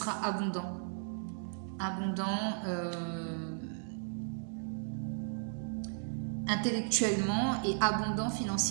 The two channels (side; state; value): left; silent; digital silence